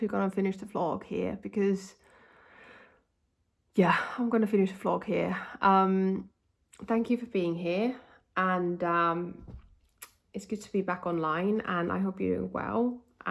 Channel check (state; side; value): identical; both; correlation 1.00